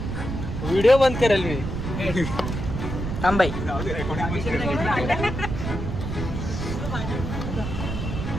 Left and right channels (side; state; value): right; noise; rumble, 4 dB below the sound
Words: व्हिडिओ बंद करेल मी. थांबाई.